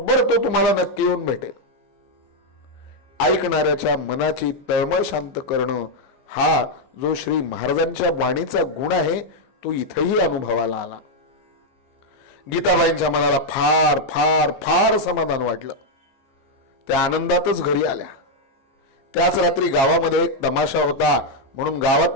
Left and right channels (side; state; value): right; late; 15 ms